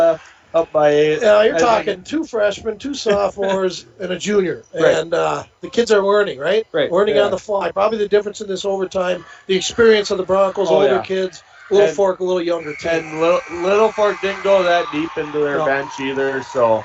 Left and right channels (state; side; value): identical; both; correlation 1.00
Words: Up by 8. Yeah, you're talking 2 freshmen, 2 sophomores, and a junior. Right. And the kids are learning, right? Right. Learning on the fly. Probably the difference in this overtime, the experience of the Broncos, older kids, Littlefork, a little younger team. And Littlefork didn't go that deep into their bench either, so.